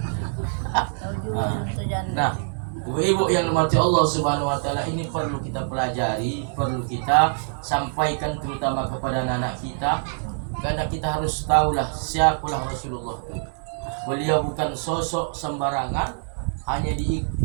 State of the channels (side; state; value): left; silent; digital silence